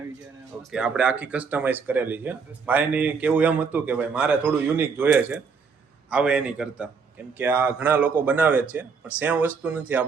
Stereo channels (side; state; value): left; quieter; 5.4 dB